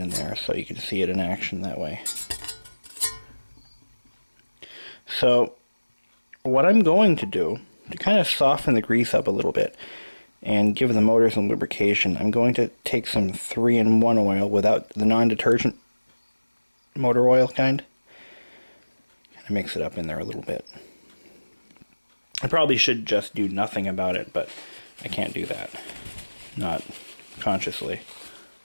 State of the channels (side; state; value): both; inverted; correlation -1.00